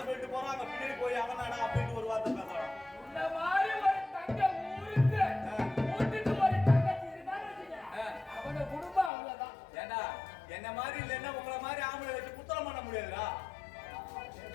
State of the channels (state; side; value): drops out; right; at 9.1 s